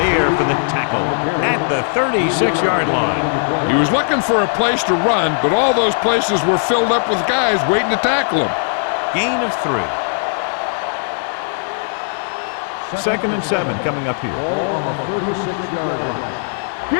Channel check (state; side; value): silent; right; digital silence